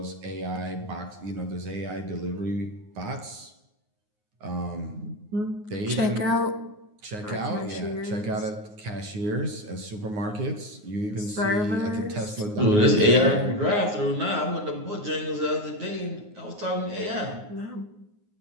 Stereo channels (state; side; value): late; left; 9.6 ms